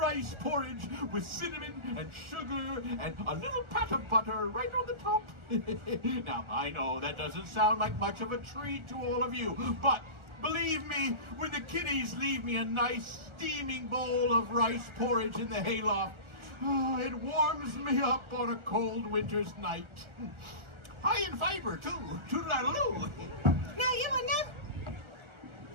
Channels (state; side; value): late; left; 1.4 ms